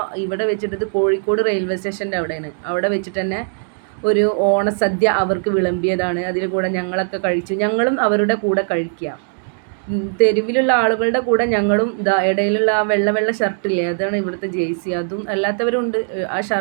ഇവിടെ വെച്ചിട്ട് ഇത് കോഴിക്കോട് റെയിൽവേ സ്റ്റേഷൻ്റെ അവിടെയാണ്. അവിടെ വെച്ചിട്ട് തന്നെ ഒരു ഓണസദ്യ അവർക്ക് വിളമ്പിയതാണ്. അതിൽ കൂടെ ഞങ്ങളൊക്കെ കഴിച്ചു. ഞങ്ങളും അവരുടെ കൂടെ കഴിക്കുക. തെരുവിലുള്ള ആളുകളുടെ കൂടെ ഞങ്ങളും ഇടയിലുള്ള ആ വെള്ള ഷർട്ടില്ലേ, അതാണ് ഇവിടുത്തെ ജേഴ്സി. അതും അല്ലാത്തവരുണ്ട്, ആ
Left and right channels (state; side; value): silent; left; digital silence